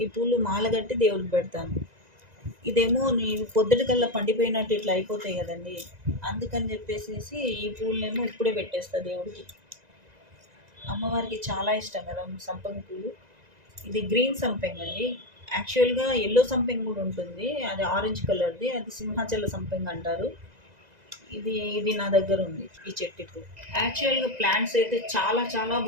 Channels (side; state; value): left; late; 2.0 ms